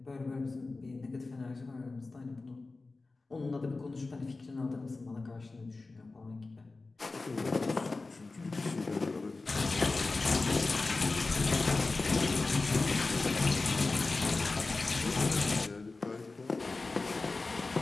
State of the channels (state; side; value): quieter; right; 3.6 dB